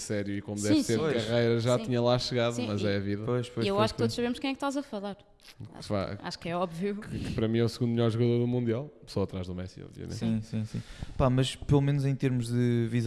e como Sim, deve sim. ser de Pois. carreira já Sim. tinha lá chegado, Sim, mas e- é a vida. Pois, Eu acho que todos sabemos quem é que estás a falar. Acho que é óbvio. Que para mim é o segundo melhor jogador do Mundial, só atrás do Messi, obviamente. Sim. Pá, mas pelo menos em termos de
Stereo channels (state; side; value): identical; both; correlation 1.00